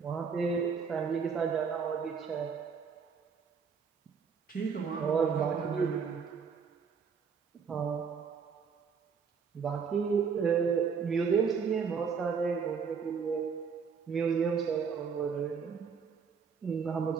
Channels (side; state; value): left; quieter; 6.1 dB